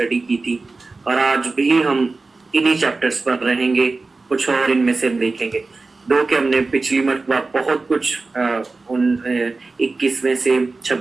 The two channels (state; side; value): quieter; left; 3.7 dB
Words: की थी, और आज भी हम इन्हीं चैप्टर्स पर रहेंगे, कुछ और इनमें से देखेंगे। दो के हमने पिछली मरतबा बहुत कुछ उन 21वें से